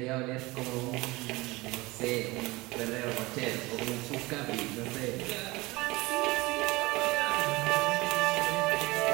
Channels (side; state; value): left; quieter; 22.1 dB